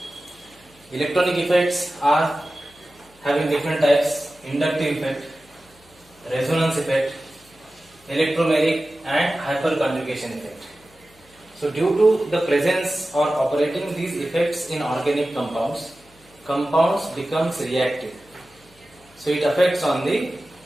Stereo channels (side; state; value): left; noise; hum, 29 dB below the sound